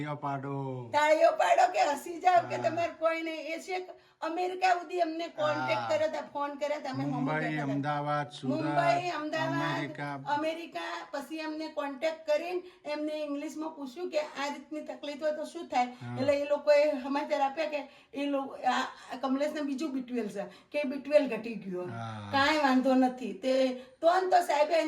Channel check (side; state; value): both; identical; correlation 1.00